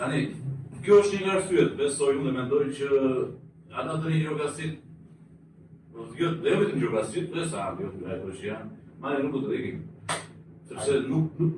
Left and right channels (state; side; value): identical; both; correlation 1.00